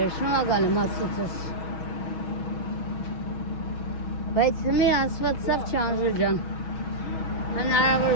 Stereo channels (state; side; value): late; right; 6.2 ms